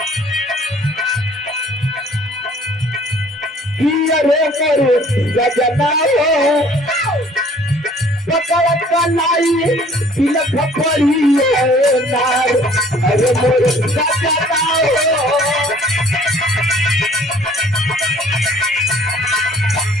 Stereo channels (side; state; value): both; normal; correlation 0.54